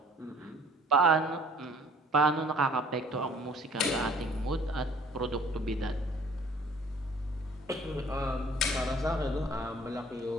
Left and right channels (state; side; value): normal; both; correlation 0.54